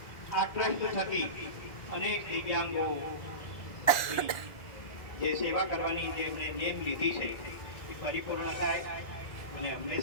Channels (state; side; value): late; right; 1.9 ms